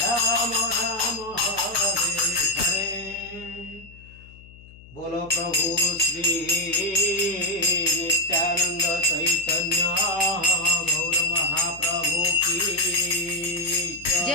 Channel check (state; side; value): noise; left; hum, 21 dB below the sound